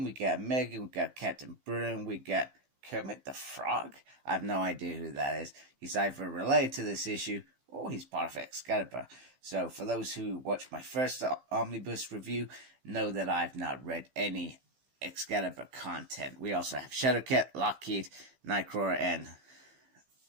We got Megan. We got Captain Bruno. We got Kermit the Frog. I have no idea who that is. He's either related to this issue or he's part of Excalibur. So for those who watched my first Omnibus review, know that I've not read any Excalibur content. We also have Shadowcat, Lockheed, Nightcrawler, and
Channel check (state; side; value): late; left; 15 ms